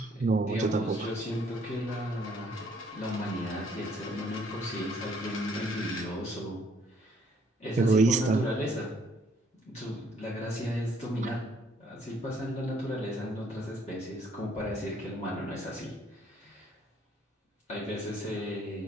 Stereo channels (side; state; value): both; normal; correlation 0.65